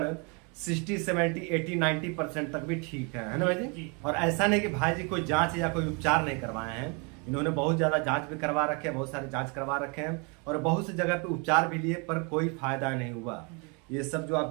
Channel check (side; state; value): left; quieter; 33.0 dB